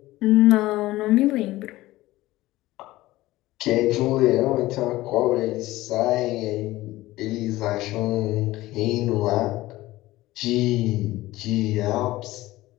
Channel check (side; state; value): right; quieter; 17.5 dB